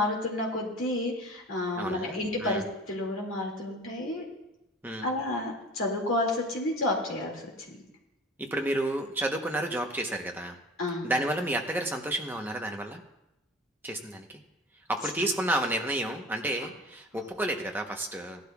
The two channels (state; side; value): normal; both; correlation 0.40